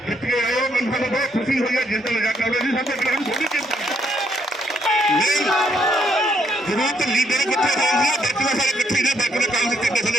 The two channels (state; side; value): normal; both; correlation 0.73